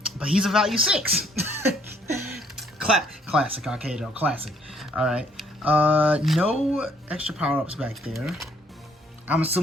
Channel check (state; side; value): normal; both; correlation 0.65